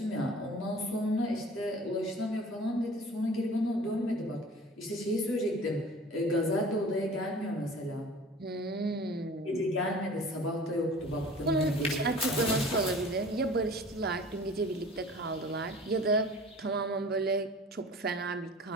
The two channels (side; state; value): both; normal; correlation 0.44